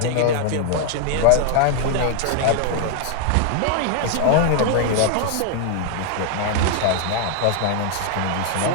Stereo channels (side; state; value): both; different; correlation 0.00